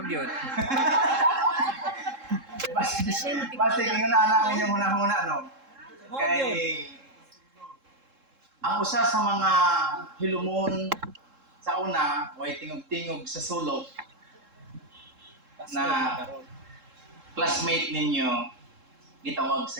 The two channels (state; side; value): late; left; 3.7 ms